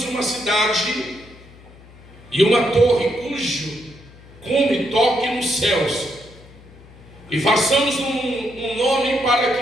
uma cidade e uma torre cujo cume toque nos céus, e façamos um nome para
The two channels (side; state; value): left; noise; hum, 22 dB below the sound